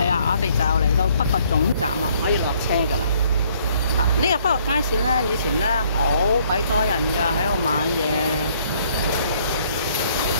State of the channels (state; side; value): inverted; both; correlation -0.63